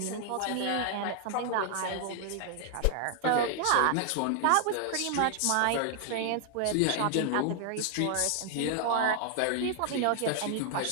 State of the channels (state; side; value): different; both; correlation 0.00